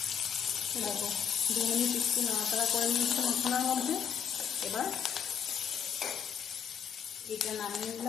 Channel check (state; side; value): quieter; right; 7.8 dB